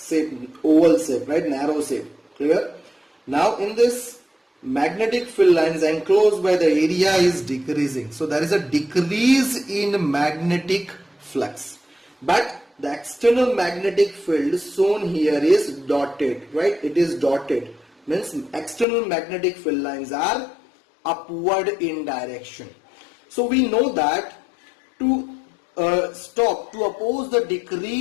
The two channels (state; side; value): drops out; right; at 18.9 s